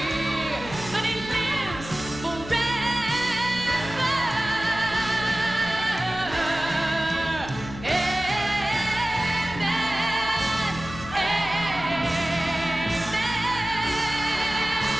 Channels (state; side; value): noise; left; hum, 13 dB below the sound